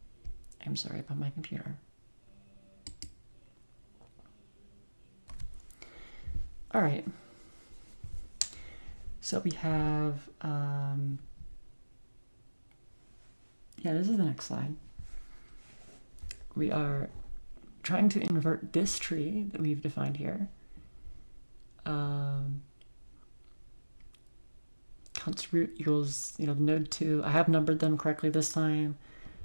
I'm sorry about my computer. All right. So we have, this is the next slide. We are trying to invert this tree that we've defined here. Const root equals, node 2. I have numbered them correctly this time.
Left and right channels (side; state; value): both; inverted; correlation -1.00